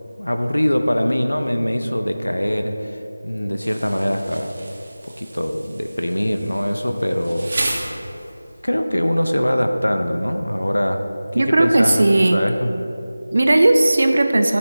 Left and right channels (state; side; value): inverted; both; correlation -0.98